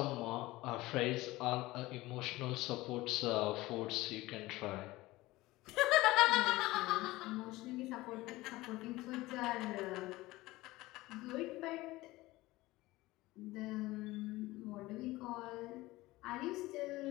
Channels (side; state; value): right; quieter; 19.0 dB